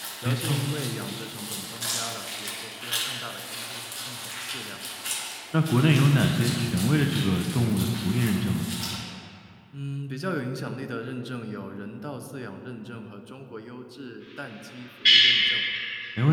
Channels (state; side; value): identical; both; correlation 1.00